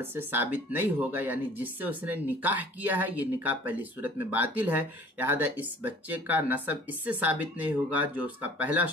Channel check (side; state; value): both; normal; correlation 0.50